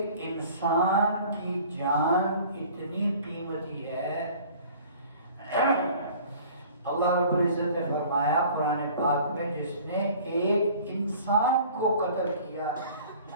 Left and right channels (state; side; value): inverted; both; correlation -0.48